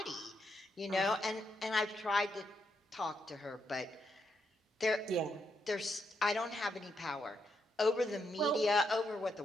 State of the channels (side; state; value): both; normal; correlation 0.80